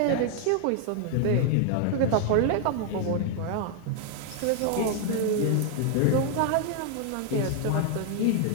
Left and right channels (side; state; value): both; different; correlation 0.00